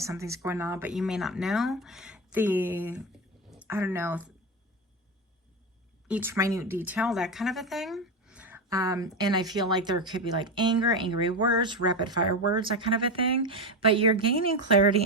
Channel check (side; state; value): both; normal; correlation 0.16